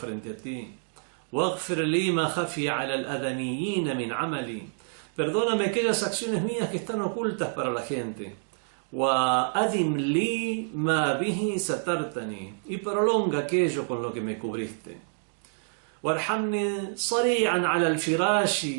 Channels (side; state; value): left; silent; digital silence